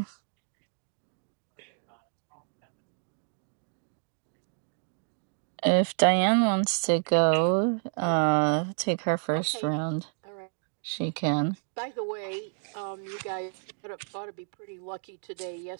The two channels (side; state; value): left; silent; digital silence